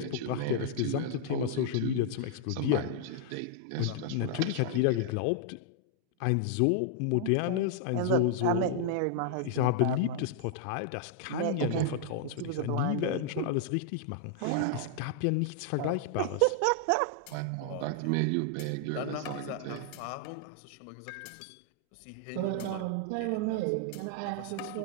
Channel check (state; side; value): different; both; correlation 0.00